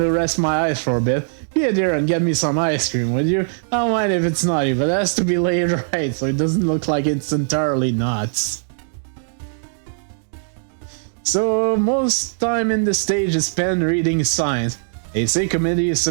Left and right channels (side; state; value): left; silent; digital silence